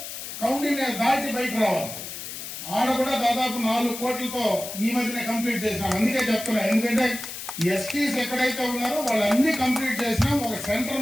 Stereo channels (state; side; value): noise; left; hiss, 9 dB below the sound